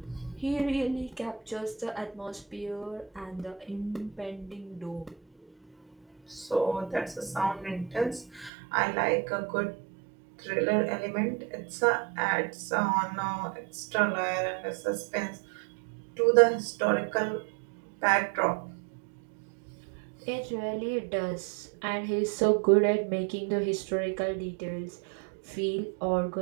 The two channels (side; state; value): left; drops out; at 8.5 s